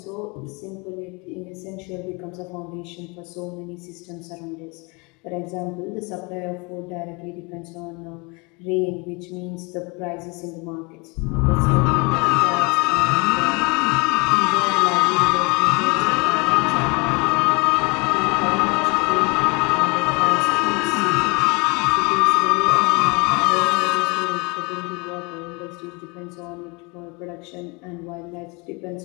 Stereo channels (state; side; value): quieter; right; 29.1 dB